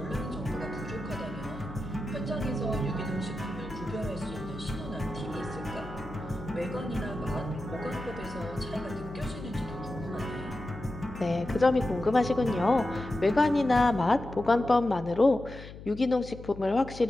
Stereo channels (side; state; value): left; noise; hum, 14 dB below the sound